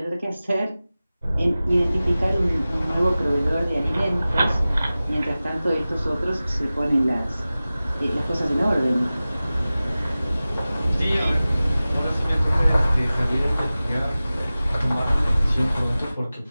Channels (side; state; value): both; inverted; correlation -0.97